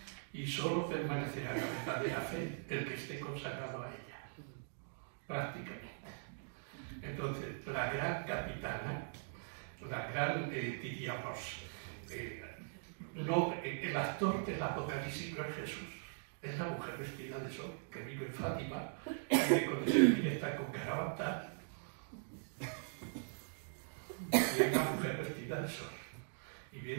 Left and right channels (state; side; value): silent; left; digital silence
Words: Y solo permanecerá la verdadera fe el que esté consagrado a ella, prácticamente. Entonces, la gran capitana, la gran, diríamos, el actor del Apocalipsis no es Jesús, es la mujer vestida de sol que vive en Fátima, y cuando se mira está con Carabantal, y es una mujer vestida de sol. Y